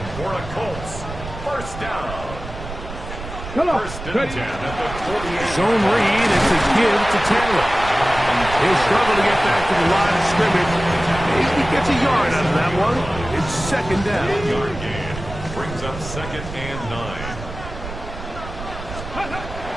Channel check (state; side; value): noise; right; rumble, 11 dB below the sound